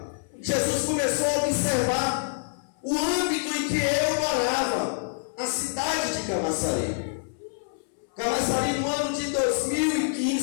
Jesus começou a observar o âmbito em que eu morava, a cidade de Camaçari. Camaçari, no ano de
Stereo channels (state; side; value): silent; right; 61 dB below the other